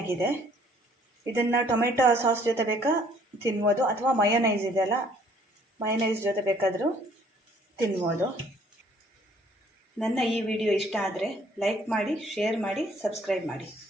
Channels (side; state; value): both; normal; correlation 0.60